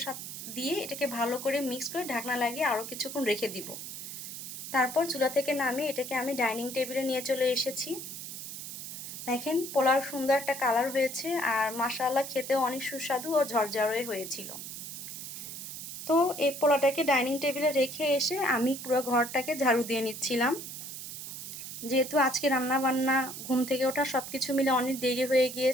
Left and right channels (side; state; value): right; noise; hiss, 9 dB below the sound